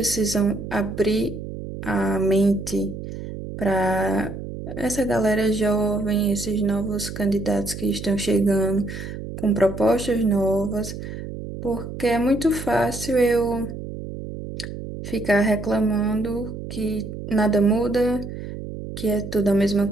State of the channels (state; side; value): noise; right; hum, 9 dB below the sound